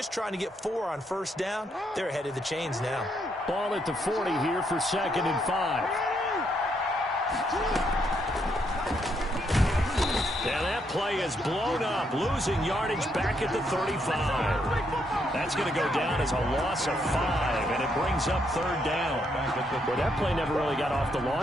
trying to get 4 on 1st down. They're ahead of the chains now. Ball at the 40 here for 2nd and 5. And that play is blown up, losing yardage back at the 35. That's going to go down as a loss of 5, and it brings up 3rd down. Well, that play never really got off the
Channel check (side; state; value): both; normal; correlation 0.75